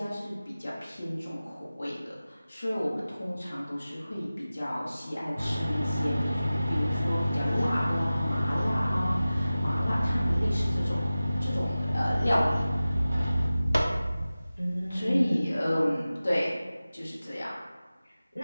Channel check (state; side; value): inverted; both; correlation -0.96